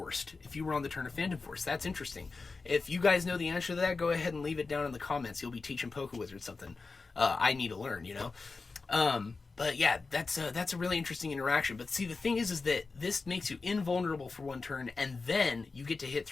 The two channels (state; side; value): quieter; right; 4.1 dB